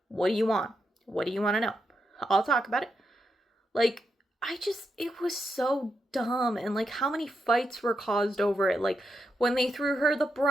What do you want? What do you want to know? I'll talk about it. Like, it was so dumb. And, like, how many fights were caused over it. Like, when they threw her the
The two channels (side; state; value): both; normal; correlation 0.84